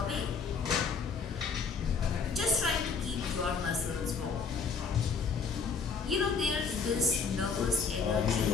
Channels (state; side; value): quieter; right; 5.2 dB